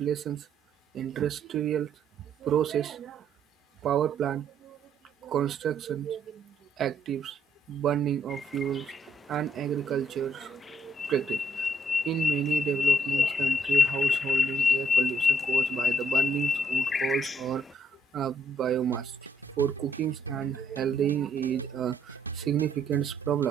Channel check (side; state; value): both; normal; correlation 0.71